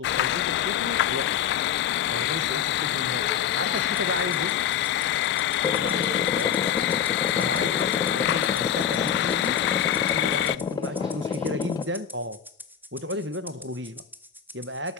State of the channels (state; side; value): quieter; right; 8.6 dB